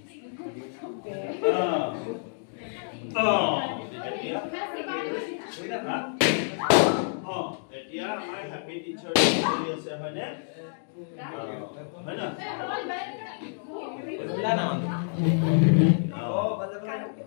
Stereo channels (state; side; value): silent; right; digital silence